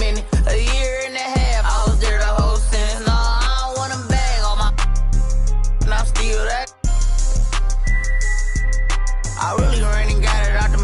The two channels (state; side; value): identical; both; correlation 1.00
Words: A year and a half, I was there the whole sentence. No, I don't want them bag on my, and I'm still that. I really ran and got it out the